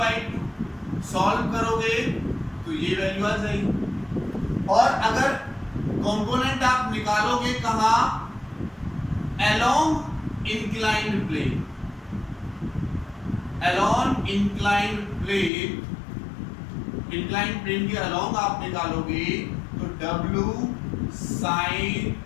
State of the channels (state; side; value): drops out; right; at 15.5 s